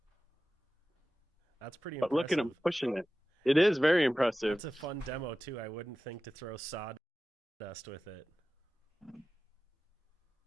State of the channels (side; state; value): both; normal; correlation 0.95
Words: That's pretty But impressive. look at him pushing it. It is very impressive. It's a fun demo too. I wouldn't think to throw sawdust with it.